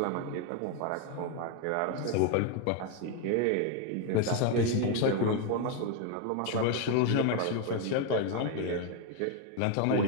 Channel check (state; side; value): different; both; correlation 0.01